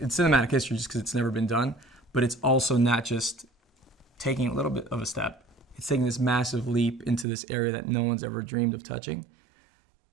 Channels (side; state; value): left; drops out; at 7.2 s